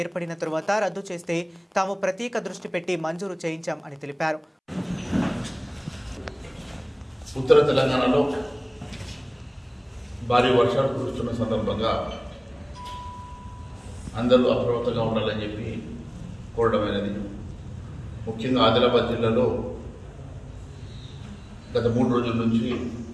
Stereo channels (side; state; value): both; identical; correlation 1.00